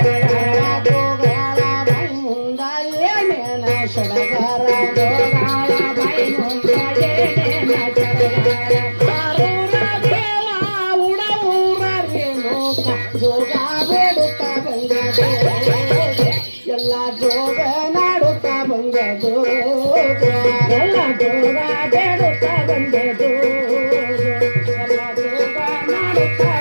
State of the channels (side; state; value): both; inverted; correlation -1.00